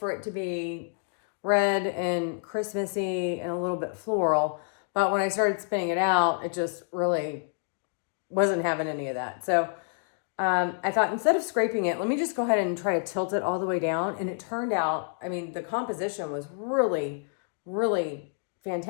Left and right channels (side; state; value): right; silent; digital silence